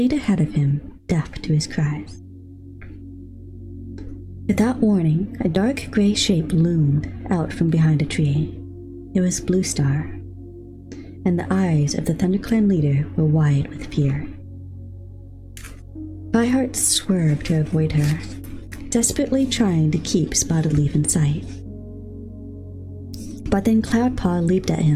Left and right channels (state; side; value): identical; both; correlation 1.00